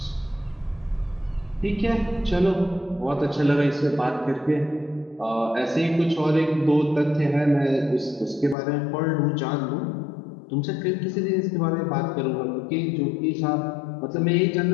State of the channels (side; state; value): right; drops out; at 8.6 s